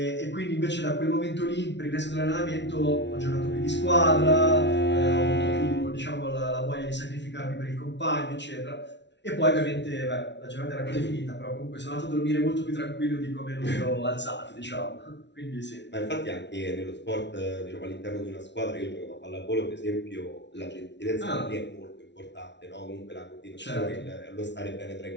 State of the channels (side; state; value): right; late; 0.51 ms